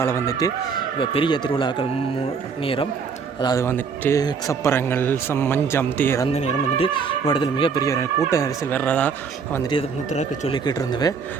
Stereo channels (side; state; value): left; quieter; 5.7 dB